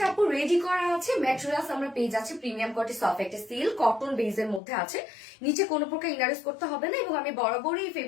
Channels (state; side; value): drops out; right; at 4.6 s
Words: আপু রেডি করা আছে, ম্যাটেরিয়ালস আমরা পেয়ে যাচ্ছি প্রিমিয়াম কোয়ালিটি সফট একটা সিল্ক কটন বেজের মধ্যে আছে, নিচে কোনো প্রকার ইনারেস করতে হবে না, এবং আমি বরাবরই এই